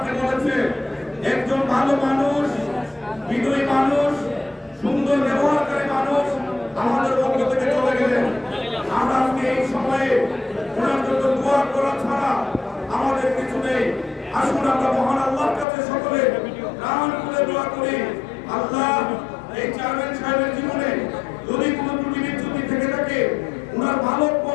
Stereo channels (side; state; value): right; drops out; at 15.7 s